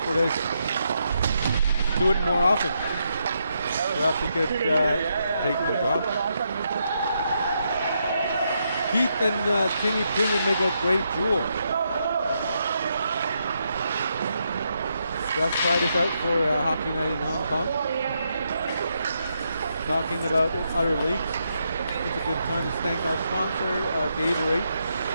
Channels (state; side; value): inverted; both; correlation -0.80